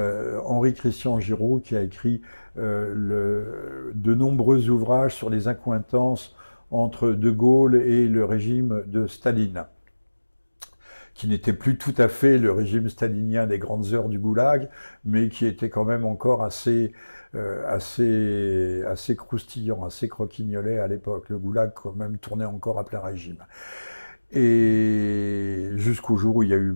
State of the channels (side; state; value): both; inverted; correlation -1.00